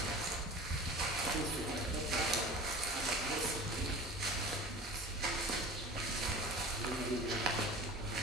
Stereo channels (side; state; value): both; normal; correlation 0.38